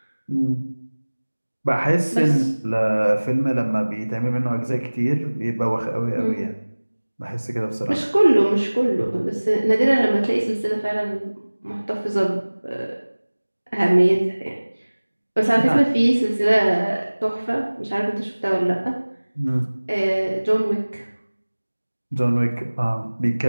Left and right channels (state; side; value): inverted; both; correlation -1.00